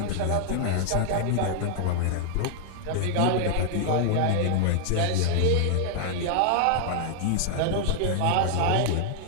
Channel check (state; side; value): different; both; correlation -0.01